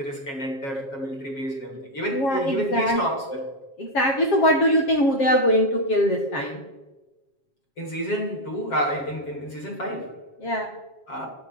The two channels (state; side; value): late; right; 7.4 ms